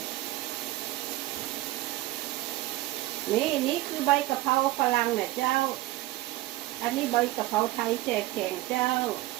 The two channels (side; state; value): left; quieter; 17.6 dB